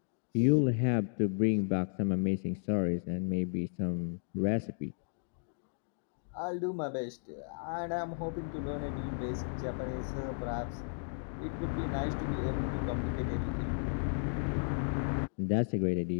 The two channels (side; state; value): right; silent; digital silence